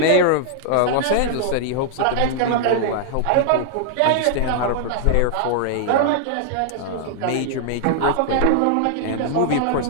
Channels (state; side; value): different; both; correlation -0.01